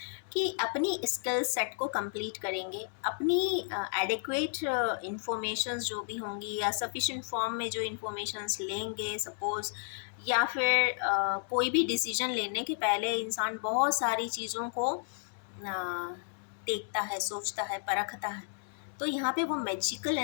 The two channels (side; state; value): right; silent; 56 dB below the other